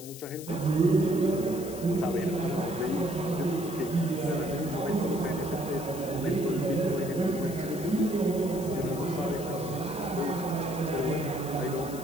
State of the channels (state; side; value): noise; left; hiss, 14 dB below the sound